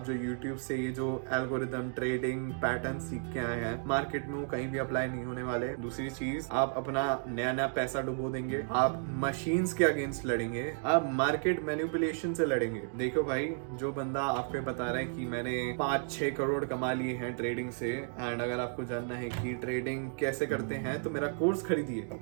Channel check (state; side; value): silent; left; 56 dB below the other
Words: जो YouTube से ये जो एल्गोरिथम ट्रेडिंग पैटर्न सीख के आए हैं मार्केट में, वो कहीं भी अप्लाई नहीं होने वाले। दूसरी चीज, आप अपना नया नया पैसा डुबो देंगे, आप मशीन्स के अगेंस्ट लड़ेंगे, आप मार्केट मैनिपुलेशन से लड़ेंगे। देखो भाई, जो बंदा आपको बता रहा है कि मैंने 5-6 करोड़ कमा लिए हैं ट्रेडिंग से, एंड अगर आपको जानना है कि ट्रेडिंग कैसे करते हैं तो मेरा कोर्स खरीदिए।